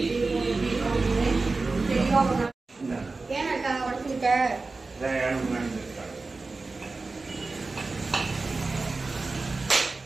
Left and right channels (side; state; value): left; quieter; 3.7 dB